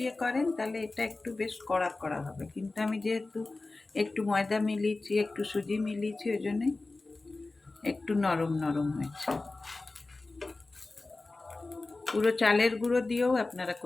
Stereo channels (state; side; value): quieter; right; 3.3 dB